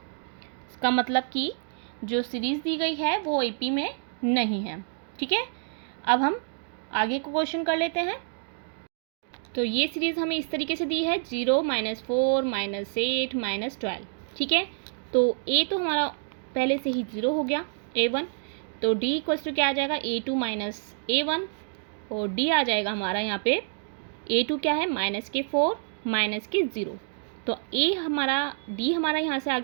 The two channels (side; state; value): left; silent; digital silence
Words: मतलब कि जो सीरीज़ दी गई है वो AP में नहीं है। ठीक है, अब हम आगे को क्वेश्चन कर लेते हैं। तो ये सीरीज़ हमें इस तरीके से दी है 0 -4 -8 -12। ठीक है, तो A तो हमारा पहले से ही 0 हो गया A1, तो D इक्वल्स टू क्या आ जाएगा A2 माइनस A1 और D आ जाएगा हमारा यहाँ पे A2 क्या है -4 -0, तो D हमारा यहाँ से आ